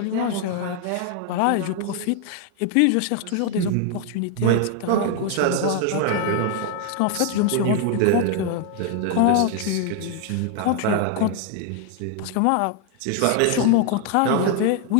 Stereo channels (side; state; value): both; different; correlation 0.00